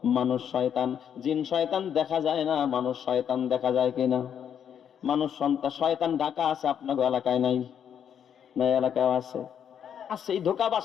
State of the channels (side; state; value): right; quieter; 8.6 dB